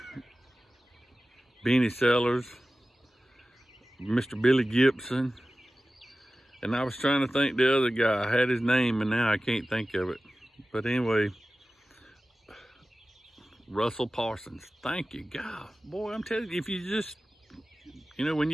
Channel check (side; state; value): both; normal; correlation 0.96